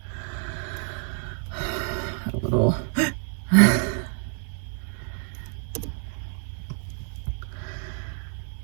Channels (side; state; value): left; silent; 58 dB below the other